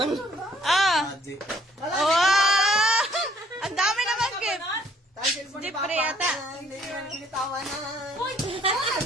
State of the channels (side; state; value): both; normal; correlation 0.61